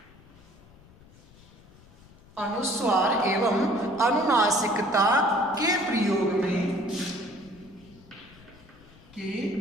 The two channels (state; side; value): noise; left; rumble, 25 dB below the sound